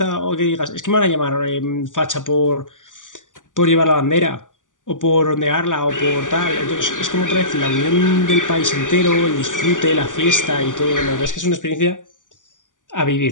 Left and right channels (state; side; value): late; right; 0.87 ms